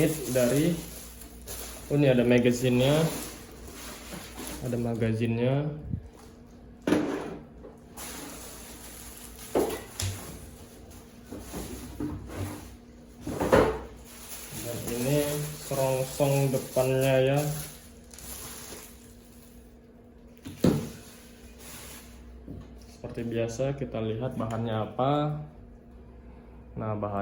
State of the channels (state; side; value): identical; both; correlation 1.00